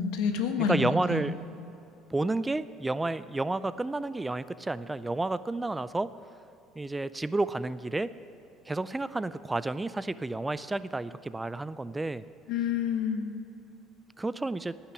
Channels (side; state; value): both; normal; correlation 0.77